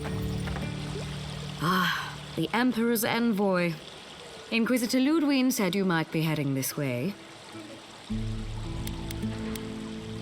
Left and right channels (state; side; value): identical; both; correlation 1.00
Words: Ah, the Emperor's envoy. Inquisitor Ludwig said you might be heading this way.